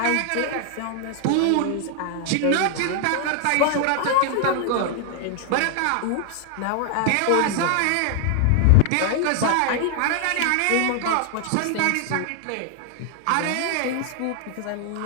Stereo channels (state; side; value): different; both; correlation 0.00